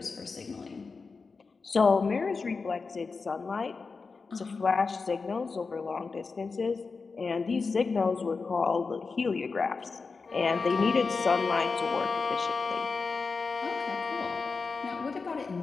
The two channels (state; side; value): quieter; right; 4.5 dB